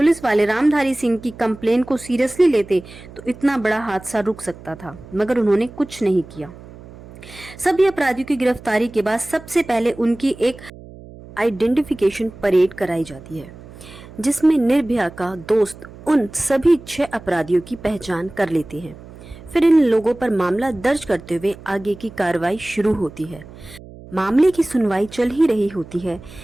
वाले रामधारी सिंह की कंप्लेन को सीरियसली लेते तो इतना बड़ा हादसा रुक सकता था, मगर उन्होंने कुछ नहीं किया। सभी अपराधियों की गिरफ्तारी के बाद सबसे पहले उनकी एक आइडेंटिफिकेशन परेड कराई जाती है जिसमें निर्भया का दोस्त उन सभी 6 अपराधियों की पहचान कर लेते हैं। फिर इन लोगों पर मामला दर्ज करते हुए आगे की कार्रवाई शुरू होती है। मामले की सुनवाई चल ही रही होती है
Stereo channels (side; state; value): right; noise; hum, 18 dB below the sound